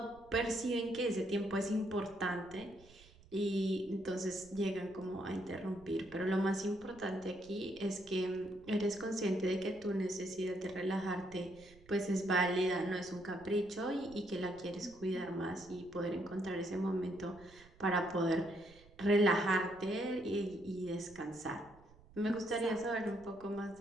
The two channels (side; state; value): right; noise; rumble, 24 dB below the sound